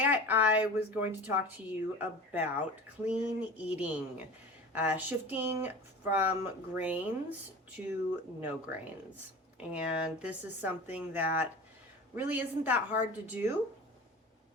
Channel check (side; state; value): both; normal; correlation 0.35